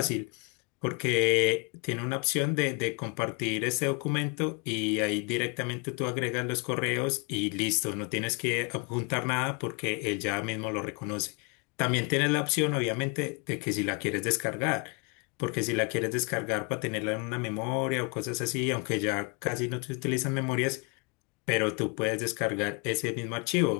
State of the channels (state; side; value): quieter; right; 32.4 dB